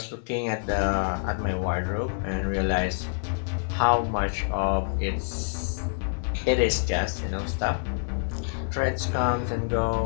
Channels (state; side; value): silent; right; digital silence